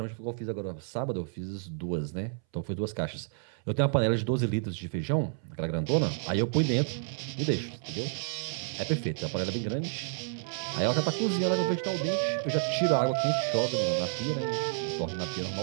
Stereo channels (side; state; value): left; silent; 58 dB below the other